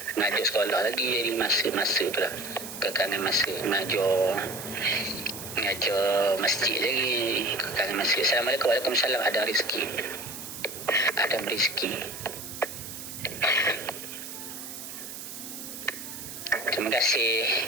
Mengajar sekolah lagi, jadi masa tu lah, kekangan masa mengajar masjid lagi, kekangan masa. Assalamualaikum. Waalaikumsalam. Adam Rizki. Terima kasih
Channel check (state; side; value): noise; right; hiss, 10 dB below the sound